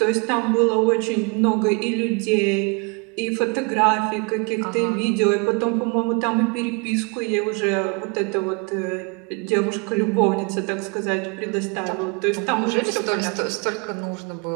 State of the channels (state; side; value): quieter; left; 32.1 dB